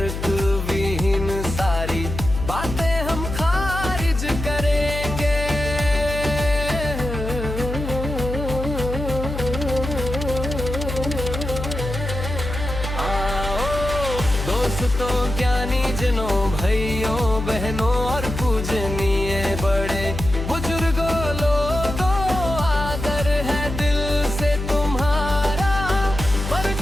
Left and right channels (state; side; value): noise; left; hum, 5 dB below the sound